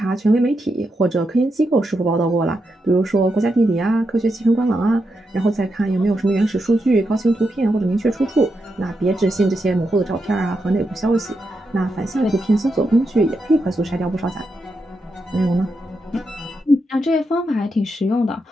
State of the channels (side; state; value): both; normal; correlation 0.85